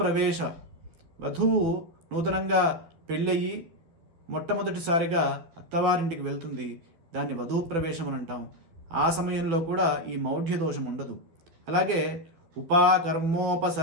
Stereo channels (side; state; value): left; late; 12 ms